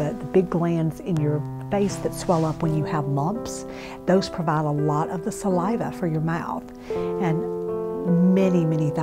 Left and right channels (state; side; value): identical; both; correlation 1.00